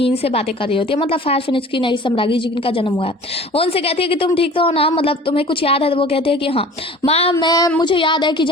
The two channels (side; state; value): both; normal; correlation 0.44